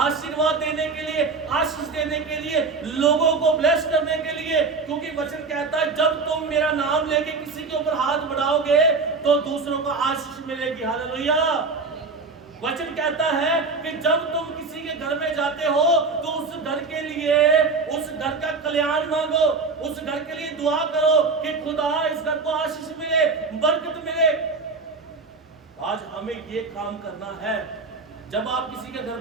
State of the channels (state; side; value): quieter; left; 4.2 dB